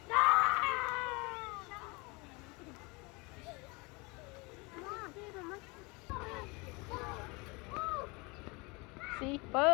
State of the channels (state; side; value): quieter; right; 27.0 dB